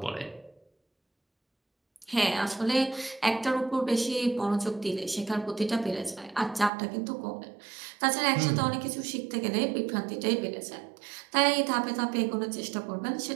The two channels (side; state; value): left; drops out; at 6.7 s